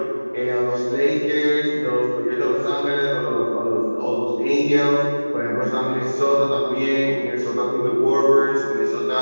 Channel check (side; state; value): both; inverted; correlation -1.00